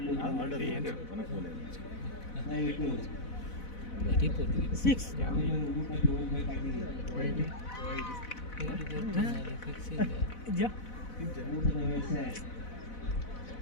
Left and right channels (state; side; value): late; right; 4.0 ms